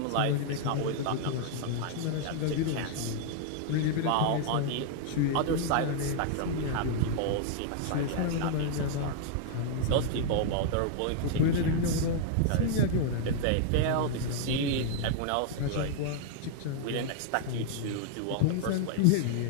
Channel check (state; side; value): different; both; correlation -0.01